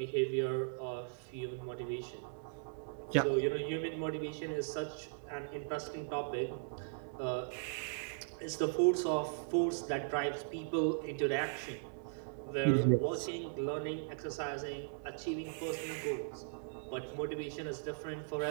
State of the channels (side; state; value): left; silent; digital silence